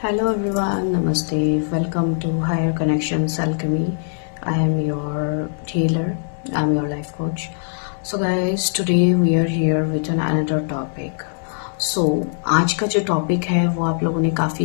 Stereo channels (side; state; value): right; silent; digital silence